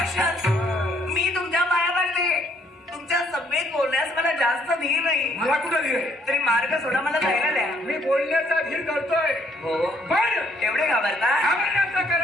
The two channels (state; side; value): normal; both; correlation 0.67